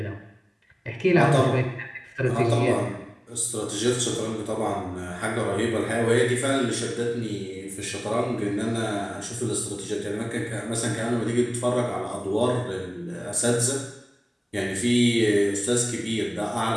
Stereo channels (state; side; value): identical; both; correlation 1.00